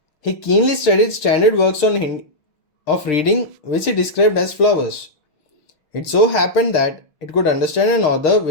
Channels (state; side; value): late; right; 6.2 ms